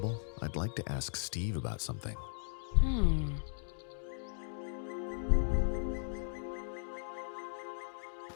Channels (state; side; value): silent; right; digital silence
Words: I'd like to ask Steve about something.